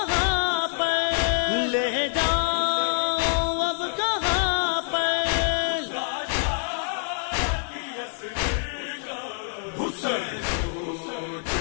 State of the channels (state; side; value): silent; right; digital silence